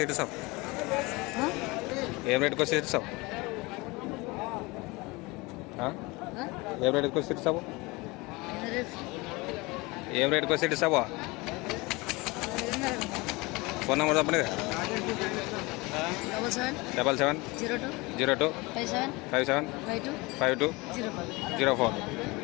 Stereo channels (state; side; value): quieter; right; 24.2 dB